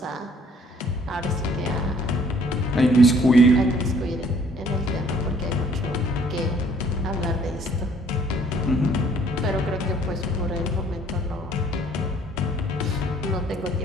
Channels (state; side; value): normal; both; correlation 0.60